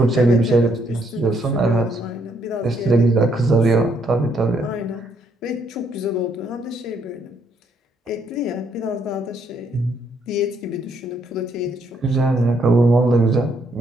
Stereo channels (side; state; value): both; normal; correlation 0.72